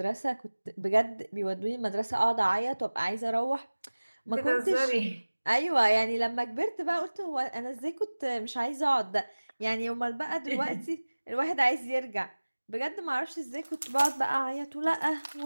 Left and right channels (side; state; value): both; inverted; correlation -1.00